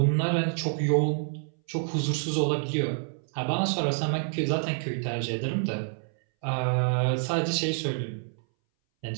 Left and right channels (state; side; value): silent; left; 59 dB below the other